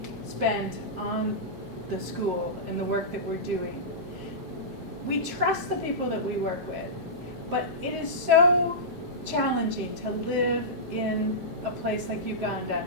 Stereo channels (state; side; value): normal; both; correlation -0.16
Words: spent on the school and the work that we're doing. We trust the people that we work with, but it is so challenging to live in a place like Uganda